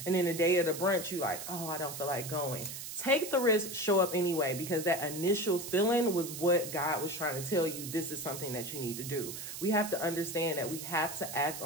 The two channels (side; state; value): right; noise; hiss, 8 dB below the sound